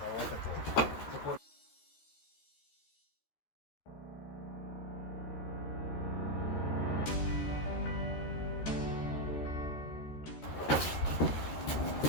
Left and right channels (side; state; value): right; late; 13 ms